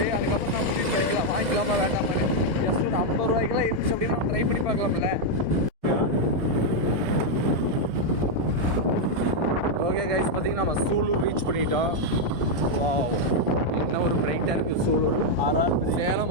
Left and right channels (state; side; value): late; left; 1.6 ms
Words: அதுக்கப்புறம் நான் முடிவு பண்ணிக்கலாம் வாங்கிக்கலாமா வேண்டாமான்னு. ஜஸ்ட் ஒரு 50 ரூபாய்க்கெல்லாம் இருந்துச்சு அப்படின்னா நம்ம ட்ரை பண்ணி பார்க்கலாம்ல. ஓகே கைஸ், பார்த்தீங்கன்னா நம்ம சூலூர் ரீச் பண்ணிட்டோம். வாவ், என்ன ஒரு பிரைட்டாக இருக்குது சூலூர்.